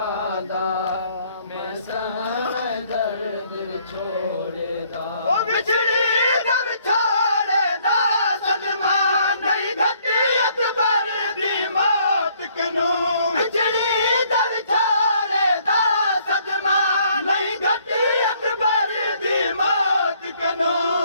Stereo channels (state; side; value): inverted; both; correlation -0.65